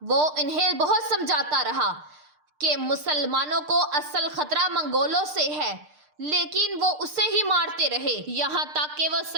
وہ انہیں بہت سمجھاتا رہا کہ مسلمانوں کو اصل خطرہ منگولوں سے ہے، لیکن وہ اسے ہی مارتے رہے، یہاں تک کہ وہ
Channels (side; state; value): left; late; 6.6 ms